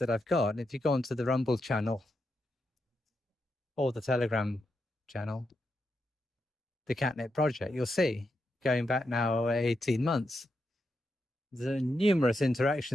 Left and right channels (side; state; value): both; normal; correlation 0.84